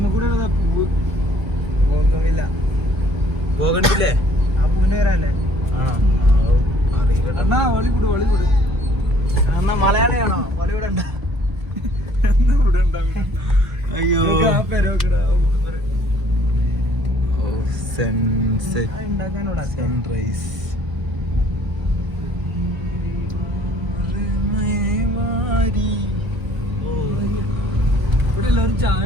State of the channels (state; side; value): late; left; 1.5 ms